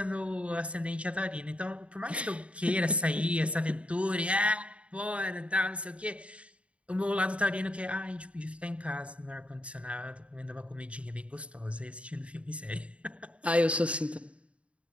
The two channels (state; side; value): late; left; 0.062 ms